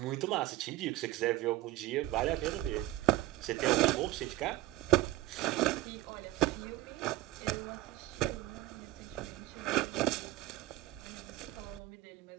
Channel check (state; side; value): quieter; left; 16.8 dB